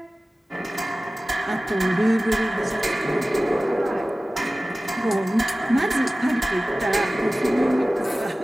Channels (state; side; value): normal; both; correlation 0.97